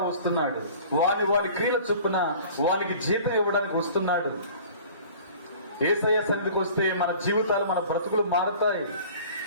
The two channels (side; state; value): both; inverted; correlation -0.47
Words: వస్తున్నాడు. వాని క్రీడ చొప్పున వానికి జీతం ఇవ్వడానికి వస్తున్నాడు. యేసయ్య సన్నిధికి వస్తే మన జీవితాలు మన బ్రతుకులు మారుతాయి,